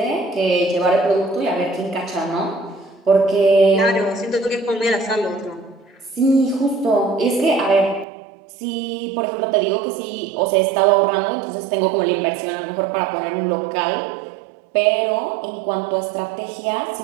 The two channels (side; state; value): left; drops out; at 8.1 s